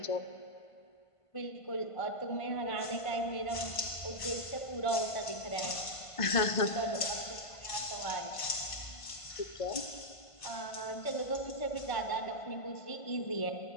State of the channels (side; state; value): right; late; 1.5 ms